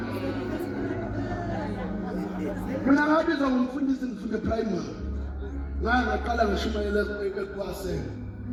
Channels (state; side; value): identical; both; correlation 1.00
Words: Mina ngabizwa ngumfundisi ngifunde primary. Ngaqala ngishumayela ekwaseni.